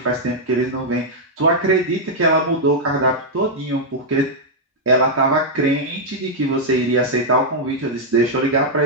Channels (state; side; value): normal; both; correlation -0.05